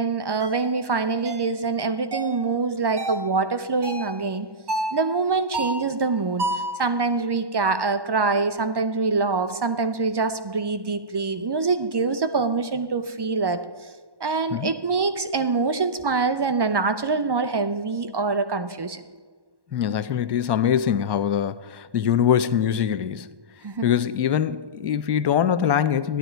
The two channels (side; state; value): left; late; 1.1 ms